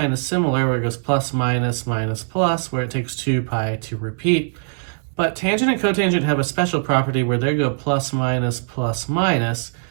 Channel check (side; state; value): left; silent; digital silence